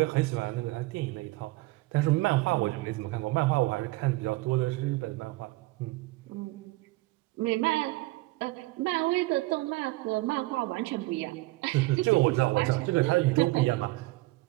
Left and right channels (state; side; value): quieter; left; 20.7 dB